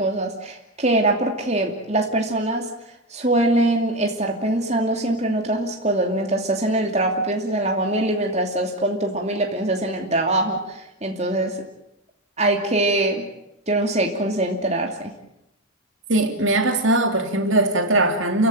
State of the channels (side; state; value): both; normal; correlation 0.11